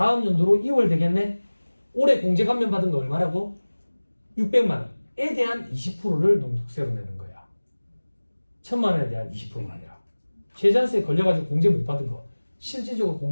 연도로 2월 되겠네. 올해 공제 감면 받은 거 얼마라고? 600만 원에 대한 20%를 농축세로 내는 거야. 1,000만 원에 대한 20%가 아니라. 최저한세에 걸려가지고 공제 못 받은 거. 실질적으로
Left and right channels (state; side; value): inverted; both; correlation -1.00